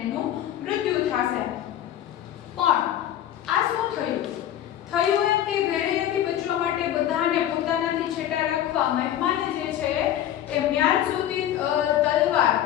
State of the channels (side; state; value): right; quieter; 11.5 dB